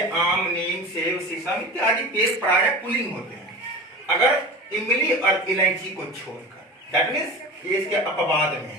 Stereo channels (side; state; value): both; normal; correlation 0.33